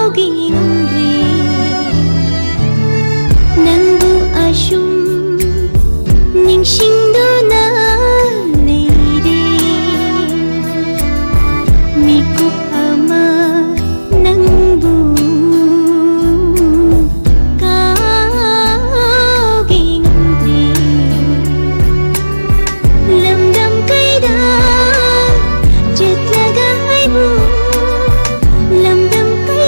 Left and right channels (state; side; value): inverted; both; correlation -1.00